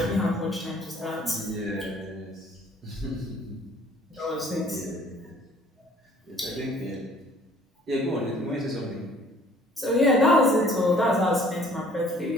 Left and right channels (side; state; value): both; normal; correlation 0.56